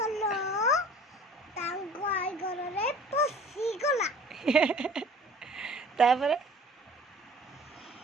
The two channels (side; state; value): both; normal; correlation 0.47